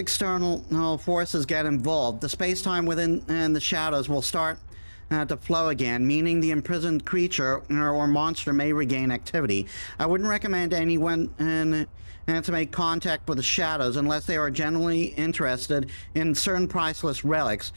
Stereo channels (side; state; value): both; inverted; correlation -1.00